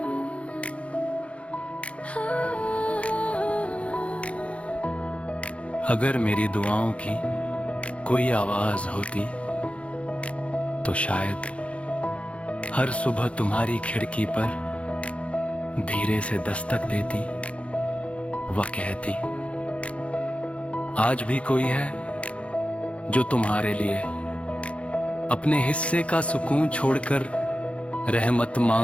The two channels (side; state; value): right; late; 0.062 ms